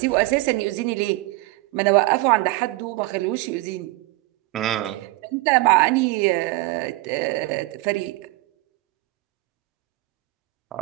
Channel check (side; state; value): left; quieter; 20.5 dB